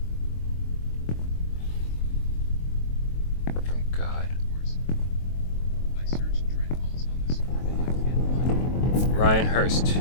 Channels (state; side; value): late; right; 23 ms